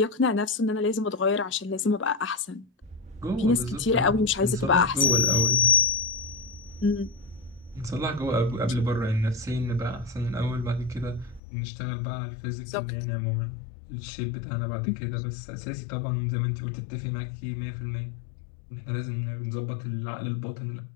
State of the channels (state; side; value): drops out; right; at 11.4 s